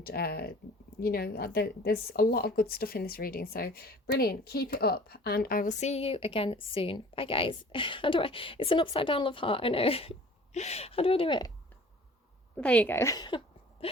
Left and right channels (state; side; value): normal; both; correlation 0.48